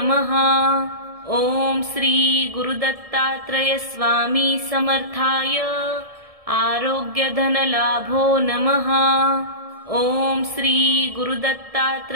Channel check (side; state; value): left; late; 1.7 ms